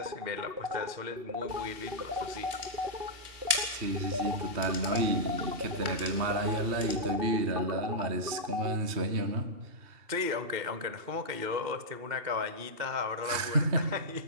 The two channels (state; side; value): late; left; 2.7 ms